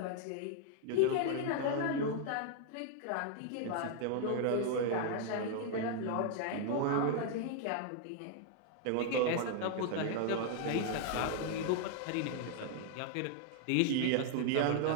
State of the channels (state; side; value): different; both; correlation 0.00